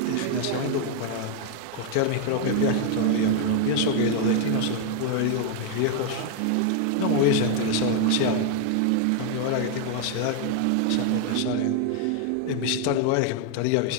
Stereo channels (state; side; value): different; both; correlation 0.00